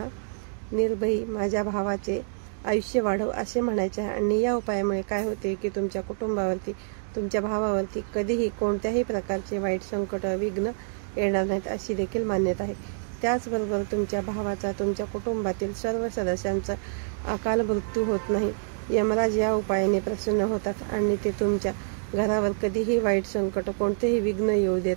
निर्भयी माझ्या भावाचे आयुष्य वाढव असे म्हणायचे आहे. आणि या उपायामुळे काय होते की तुमच्या कुटुंबावरती, तुमच्या भावावरती कधीही कोणत्याही प्रकारचे वाईट संकट, विघ्न येणार नाहीत अशी देखील मान्यता आहे. त्याचबरोबर तुमच्या भावाचा, तुमच्या कुटुंबातील सर्व सदस्यांचा अकाल मृत्यू होत नाही. यमराज या उपायाने प्रसन्न होतात आणि ते तुमच्या घरावर कधीही वाईट संकट, कोणतेही विघ्न येऊ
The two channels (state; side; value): silent; left; digital silence